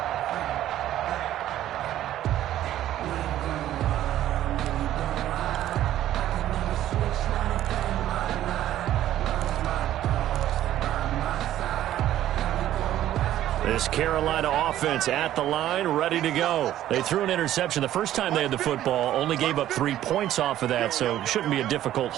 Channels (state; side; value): quieter; left; 12.7 dB